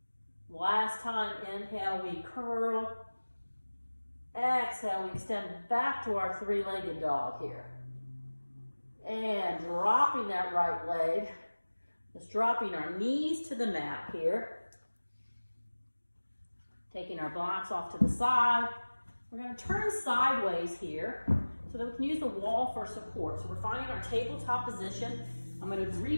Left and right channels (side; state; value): both; inverted; correlation -1.00